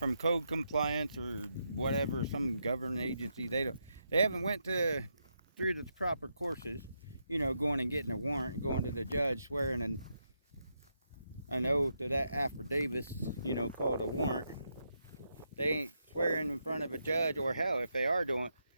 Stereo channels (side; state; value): both; inverted; correlation -0.82